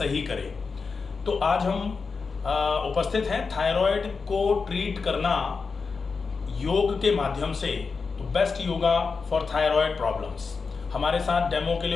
करे। तो आज हम उपस्थित हैं थायराइड को ट्रीट करना योग के माध्यम से, तो best yoga for thyroid problems. हमारे साथ डेमो के लिए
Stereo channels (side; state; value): right; quieter; 4.8 dB